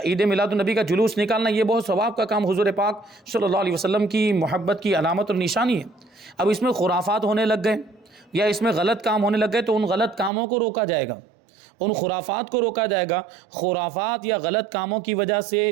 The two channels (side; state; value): left; drops out; at 10.3 s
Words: عید میلاد النبی کا جلوس نکالنا یہ بہت ثواب کا کام، حضور پاک صلی اللہ علیہ وسلم کی محبت کی علامت اور نشانی ہے۔ اب اس میں خرافات ہونے لگ گئے یا اس میں غلط کام ہونے لگ گئے تو ان غلط کاموں کو روکا جائے گا، ان خرافات کو روکا جائے گا۔ خرافات یا غلط کاموں کی وجہ سے